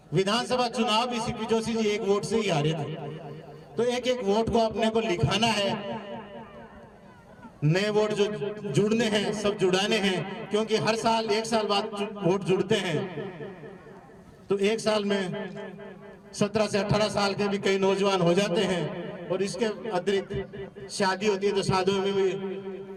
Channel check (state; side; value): identical; both; correlation 1.00